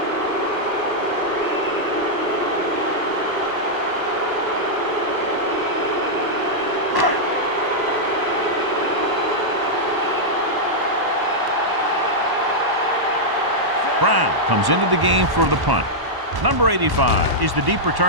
Brown comes into the game for the punt. Number 85 is the deep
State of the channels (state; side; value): late; left; 1.1 ms